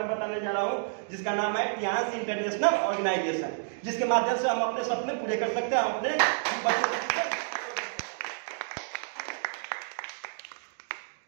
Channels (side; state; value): left; silent; digital silence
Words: बताने जा रहा हूँ जिसका नाम है टियांस इंटरनेशनल ऑर्गेनाइजेशन, जिसके माध्यम से हम अपने सपने पूरे कर सकते हैं, हम अपने बच्चों।